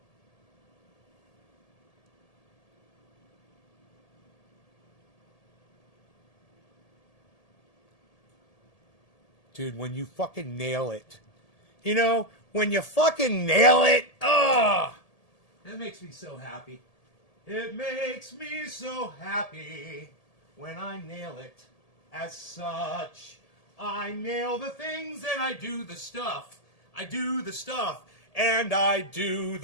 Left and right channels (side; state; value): right; late; 1.8 ms